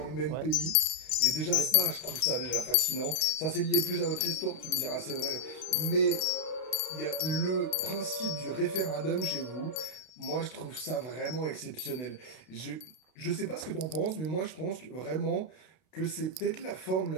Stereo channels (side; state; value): right; late; 32 ms